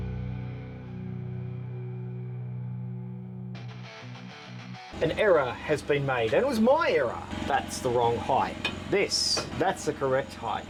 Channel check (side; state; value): both; identical; correlation 1.00